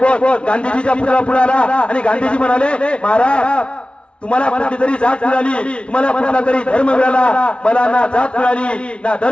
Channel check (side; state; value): right; late; 0.059 ms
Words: गांधीजीचा पुतळा पुढे आला आणि गांधीजी म्हणाले महाराज तुम्हाला कुठली तरी जात मिळाली, तुम्हाला कुठला तरी धर्म मिळाला, मला ना जात मिळाली ना